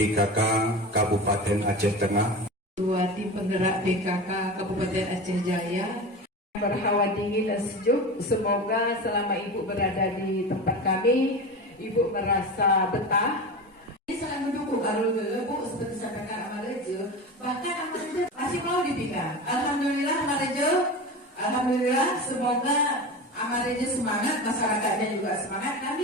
Kabupaten Aceh Tengah, Ketua Tim Penggerak PKK Kabupaten Aceh Jaya. Berhawa dingin dan sejuk. Semoga selama Ibu berada di tempat kami, Ibu merasa betah. Ini sangat mendukung Arul Bu, seperti sampaikan Amarejo. Bahkan Amarejo masih mau dipindah. Alhamdulillah Amarejo, alhamdulillah. Semoga Amarejo semangat, masyarakatnya juga semangat,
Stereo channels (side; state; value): both; normal; correlation 0.28